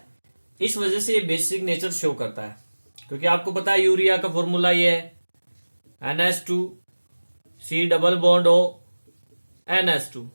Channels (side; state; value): both; inverted; correlation -1.00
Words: इस वजह से ये बेसिक नेचर शो करता है। क्योंकि आपको पता है यूरिया का फॉर्मूला ये है NH2C double bond O NH2।